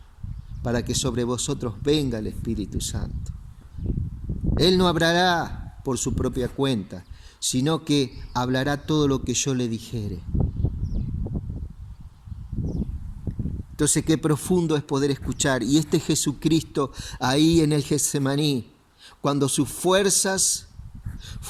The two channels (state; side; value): identical; both; correlation 1.00